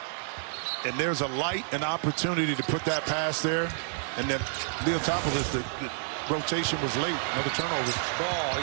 and there's a light, an opportunity to put that pass there, and then Leotopoulos, the rotation was late. Another turnover. Ball,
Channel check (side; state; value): left; silent; digital silence